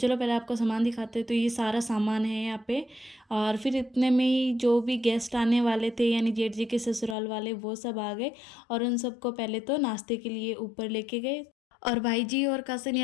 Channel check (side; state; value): right; drops out; at 7.2 s